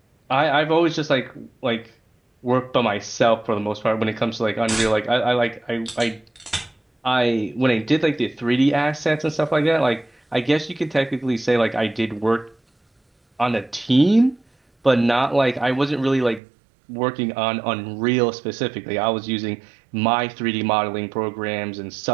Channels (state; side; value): drops out; left; at 16.4 s